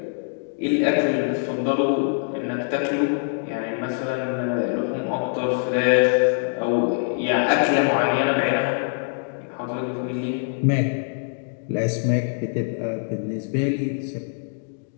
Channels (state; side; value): silent; right; digital silence